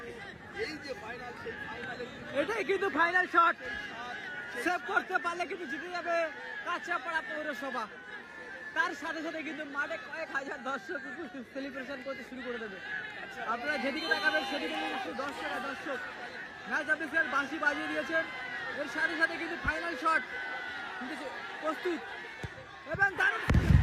এই যে ফাইনাল, সেই ফাইনালে এটাই কিন্তু ফাইনাল শট। সেভ করতে পারলে কিন্তু জিতে যাবে কাঁচরাপাড়া পৌরসভা। তার সাথে সাথে কিন্তু মাঠে কয়েক হাজার দর্শক সেলিব্রেশন করতে শুরু করে দেবে। আপনারা যেদিকে তাকাবেন সেদিকে কিন্তু দর্শক ম্যাচ অফিসিয়াল বাঁশি বাজিয়ে দিয়েছেন। এর সাথে সাথে কিন্তু ফাইনাল শট কিন্তু প্রস্তুত এবং দারুণ।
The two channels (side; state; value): both; identical; correlation 1.00